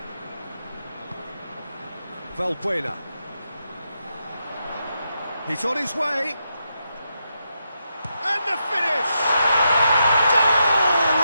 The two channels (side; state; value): both; inverted; correlation -0.83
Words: Valbuena. He's on his way. And the finish! Goal!